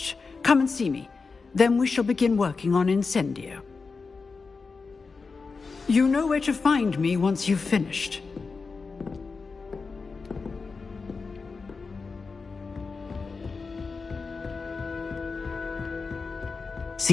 come and see me. Then we shall begin working on Incendio. You know where to find me once you've finished.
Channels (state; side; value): quieter; right; 4.5 dB